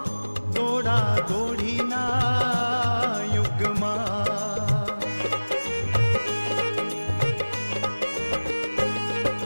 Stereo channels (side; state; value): both; inverted; correlation -1.00